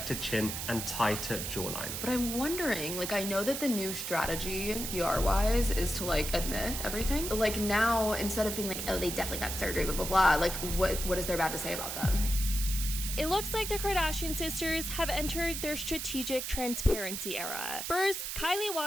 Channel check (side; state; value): right; noise; hiss, 4 dB below the sound